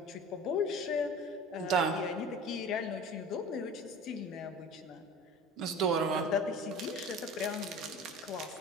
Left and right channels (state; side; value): normal; both; correlation 0.38